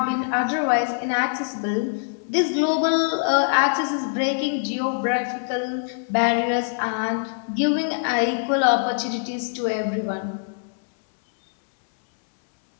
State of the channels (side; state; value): right; silent; 63 dB below the other